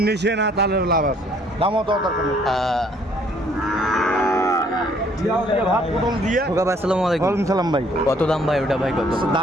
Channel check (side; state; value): both; normal; correlation 0.62